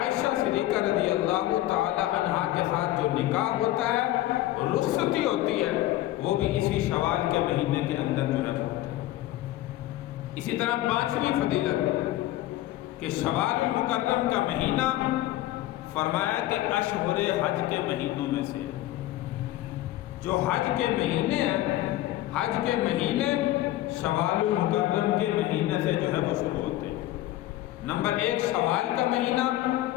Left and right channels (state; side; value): quieter; right; 15.2 dB